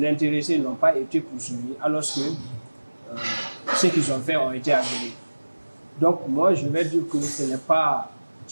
intéressés n'ont pas été poursuivis, alors que ce qu'ils ont fait ont été avérés. Donc, moi, je vais dire que ce n'est pas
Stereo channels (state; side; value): inverted; both; correlation -1.00